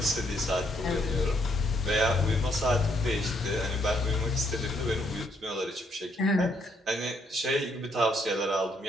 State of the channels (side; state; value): both; normal; correlation 0.72